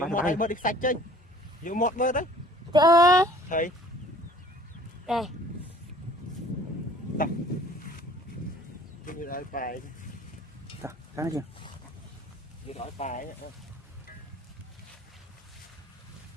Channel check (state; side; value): normal; both; correlation 0.51